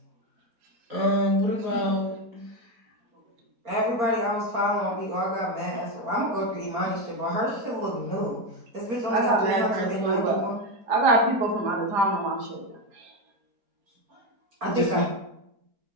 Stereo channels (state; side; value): late; left; 4.3 ms